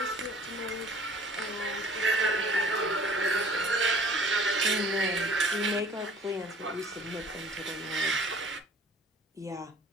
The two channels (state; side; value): normal; both; correlation 0.51